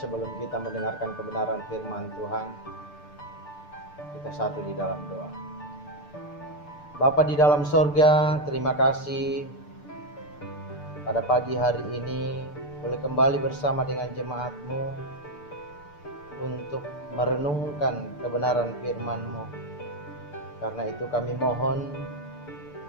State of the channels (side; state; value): right; late; 6.8 ms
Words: kita mendengarkan kebenaran firman Tuhan, kita satu di dalam doa. Bapa di dalam sorga, terima kasih pada pagi hari ini boleh kembali bersama dengan jemaat-Mu untuk merenungkan kebenaran firman-Mu. Karena itu kami mohon